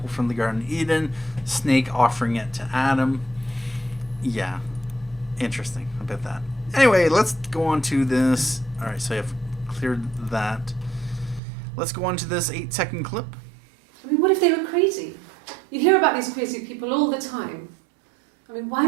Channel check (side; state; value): left; drops out; at 11.4 s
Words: from the Garden of Eden, snake offering it to Adam. Yeah. Interesting about that. Anyway, let's go on to this. Alright, so I've cleared that. Let's go on to this 8-second clip. I mean, what if they were crazy? You hear about these crazy people all the time. I mean, why